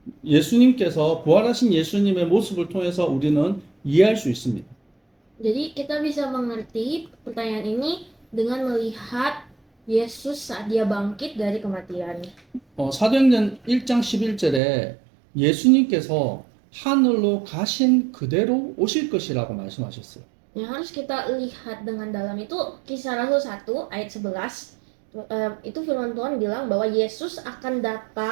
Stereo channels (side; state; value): left; drops out; at 14.6 s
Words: 예수님께서 부활하신 예수님의 모습을 통해서 우리는 이해할 수 있습니다. Jadi kita bisa mengerti pertanyaan ini dengan melihat Yesus saat dia bangkit dari kematian. 사도행전 1장 11절에 예수님께서 하늘로 가신 그대로 오실 것이라고 말씀하셨어요. Yang harus kita lihat dengan dalam itu Kisah Rasul 1 ayat 11. Itu firman Tuhan bilang bahwa Yesus akan